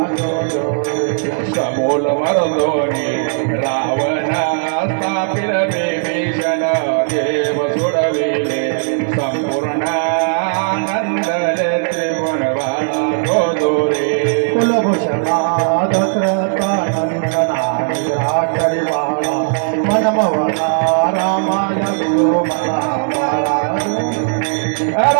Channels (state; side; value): silent; left; digital silence